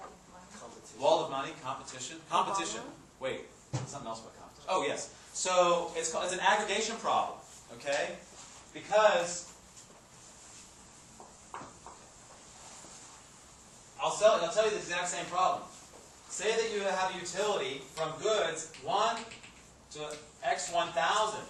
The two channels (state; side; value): identical; both; correlation 1.00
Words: Competition. Wall of money, competition. Competition. Wait, something else about competition. Oh, yes. So it's an aggregation problem, okay? Because I'll tell you the exact same problem. Say that you have a utility from goods 1 to X1000.